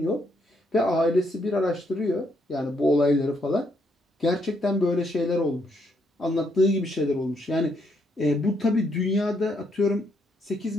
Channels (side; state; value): both; normal; correlation 0.74